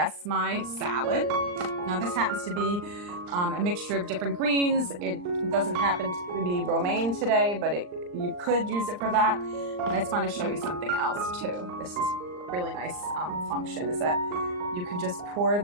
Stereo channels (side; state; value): left; late; 39 ms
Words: my salad. Now this happens to be a mixture of different greens. It doesn't happen to be romaine today, but you could use it for that. And I just want to show you something else too. This is a really nice function, is that you can just pour